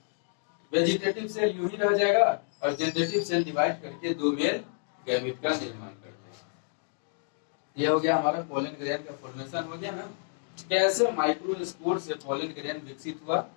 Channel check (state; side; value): silent; right; digital silence